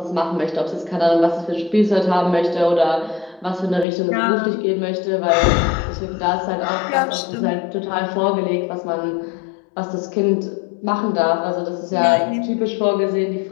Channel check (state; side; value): drops out; right; at 3.9 s